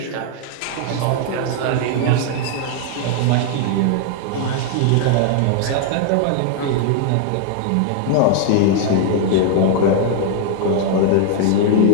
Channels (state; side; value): different; both; correlation 0.00